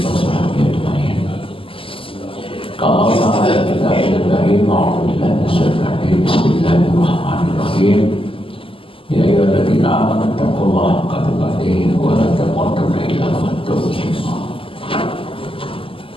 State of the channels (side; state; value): right; late; 0.26 ms